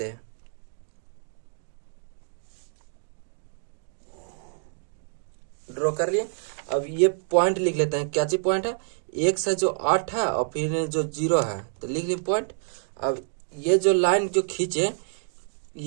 हैं। ड्रॉ कर लिए। अब ये पॉइंट लिख लेते हैं, क्या चीज पॉइंट है, x है जो 8 है और फिर जो 0 है, तो लिख लिए पॉइंट। अब ये जो लाइन जो खींचे,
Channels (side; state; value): left; silent; digital silence